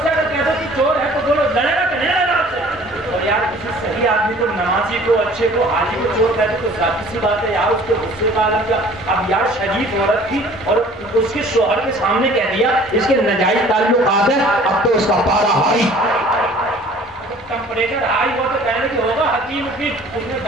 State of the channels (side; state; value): both; normal; correlation 0.50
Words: سے اگر کہتے ہو کہ چور ہے تو بولو لڑے گا کہ نہیں لڑے گا آپ سے. اور یار کسی صحیح آدمی کو, نمازی کو, اچھے کو, حاجی کو چور کہتے تو ظاہر سی بات ہے یار اس کے غصے کا عالم کیا. اب یار شریف عورت تھی اور اس کے شوہر کے سامنے کہہ دیا اس کے ناجائز تعلقات ہیں, اب تو اس کا پارا ہائی ٹمپریچر ہائی ہوا تو کہنے کی ہوگا حکیم پھر اس نے